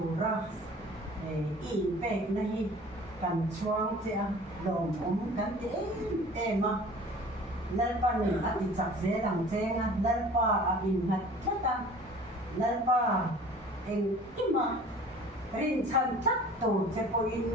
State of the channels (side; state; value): both; normal; correlation 0.46